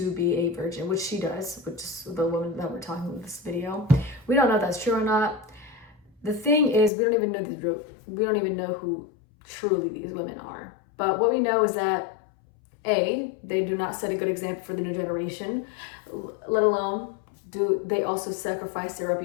be a virgin, which she does, which is the woman that we're talking about in this video. We don't know if that's true or not. The thing is, we don't even know who truly these women are. But what we know is that A, they do not set a good example for the new generation, let alone do they also sacrifice their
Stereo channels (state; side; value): drops out; right; at 6.9 s